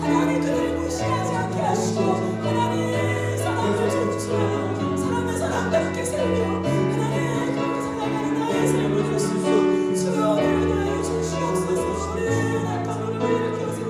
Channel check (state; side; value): identical; both; correlation 1.00